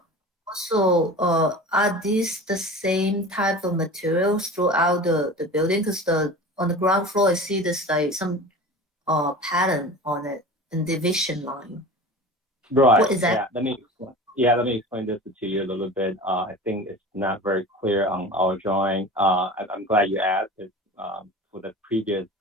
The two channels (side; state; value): both; normal; correlation 0.36